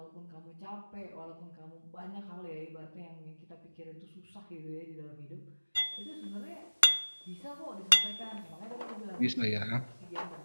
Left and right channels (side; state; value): both; inverted; correlation -1.00